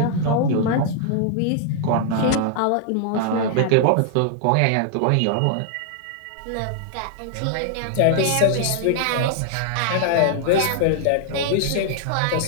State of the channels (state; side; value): different; both; correlation -0.01